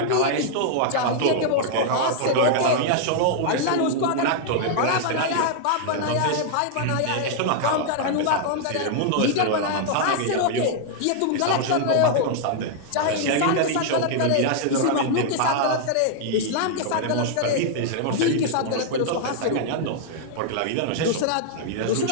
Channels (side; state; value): both; different; correlation -0.01